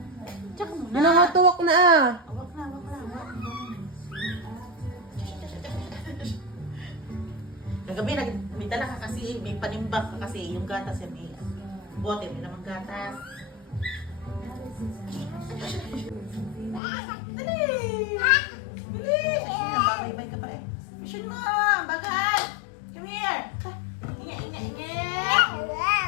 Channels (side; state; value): right; drops out; at 16.8 s